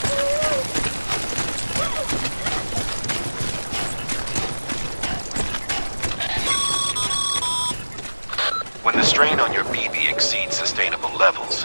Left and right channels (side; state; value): both; inverted; correlation -1.00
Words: When the strain on your BB exceeds sustainable levels,